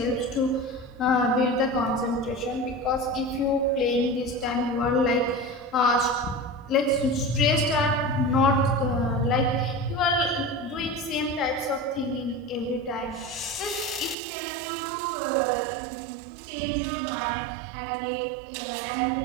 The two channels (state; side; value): drops out; left; at 14.2 s